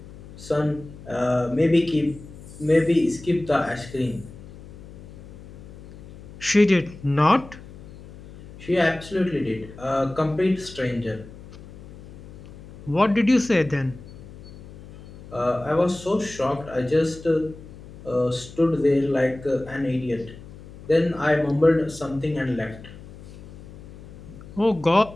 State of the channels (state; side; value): noise; left; hum, 17 dB below the sound